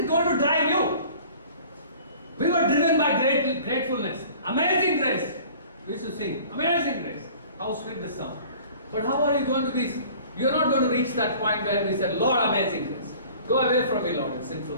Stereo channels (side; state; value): both; inverted; correlation -0.47